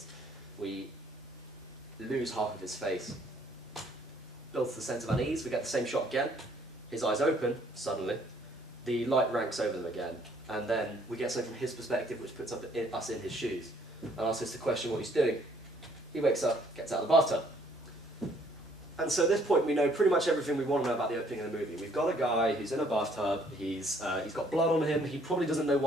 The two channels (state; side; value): normal; both; correlation 0.63